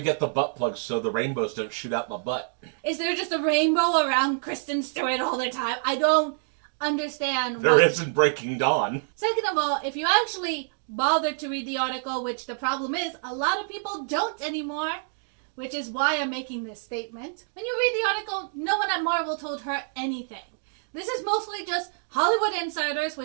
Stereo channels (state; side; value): silent; left; digital silence